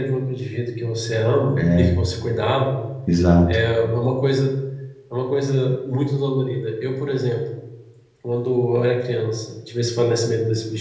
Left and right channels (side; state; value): both; identical; correlation 1.00